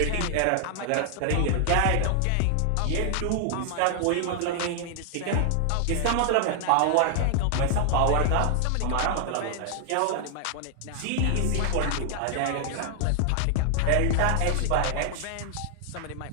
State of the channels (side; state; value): both; different; correlation 0.00